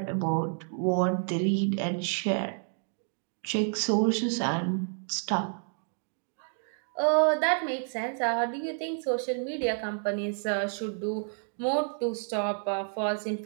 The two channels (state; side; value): silent; left; 58 dB below the other